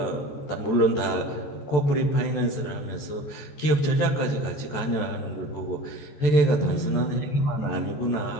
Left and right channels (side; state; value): right; late; 14 ms